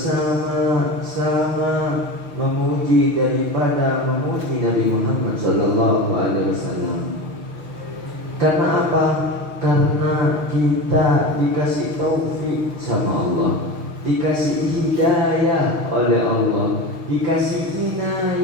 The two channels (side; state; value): left; late; 6.3 ms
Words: memuji daripada memuji Nabi Muhammad sallallahu alaihi wasallam. Karena apa? Karena kita dikasih taufik sama Allah, dikasih hidayah oleh Allah, dikasih